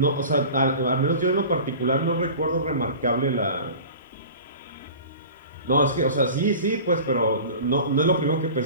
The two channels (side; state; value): both; inverted; correlation -0.39